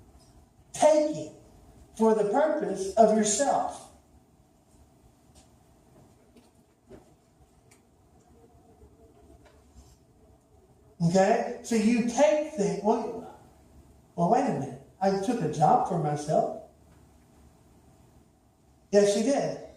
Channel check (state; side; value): identical; both; correlation 1.00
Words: taking for the purpose of yourself. Okay? So you take things. Well, wait a minute. I took a job for myself. Yes, you did.